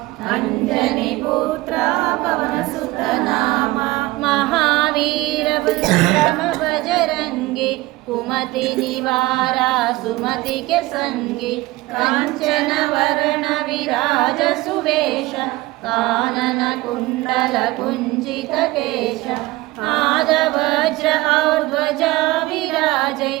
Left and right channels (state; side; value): quieter; left; 19.9 dB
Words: ಅಂಜನಿ ಪುತ್ರ ಪವನ ಸುತ ನಾಮ ಮಹಾವೀರ ವಿಕ್ರಮ ಬಜರಂಗಿ ಕುಮತಿ ನಿವಾರ ಸುಮತಿ ಕೆ ಸಂಗಿ ಕಂಚನ ವರ್ಣ ವಿರಾಜ ಸುವೇಶ ಕಾನನ ಕುಂಡಲ ಕುಂಜಿತ ಕೇಶ ಆದ ವಜ್ರ ಔರ್ಧ್ವಜ ವಿರಾಜೈ